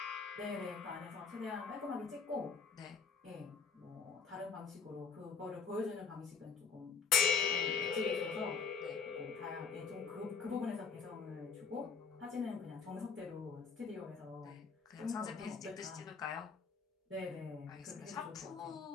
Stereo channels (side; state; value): right; quieter; 5.5 dB